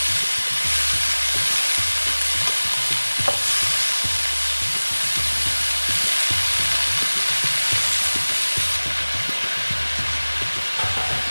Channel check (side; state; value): both; inverted; correlation -1.00